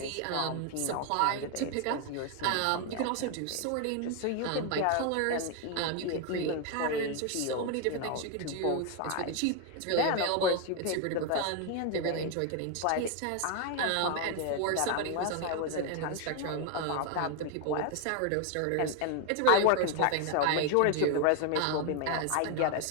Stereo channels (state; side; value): different; both; correlation 0.01